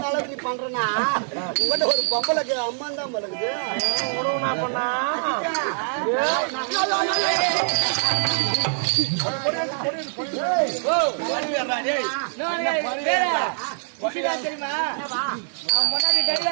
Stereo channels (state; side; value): silent; left; 63 dB below the other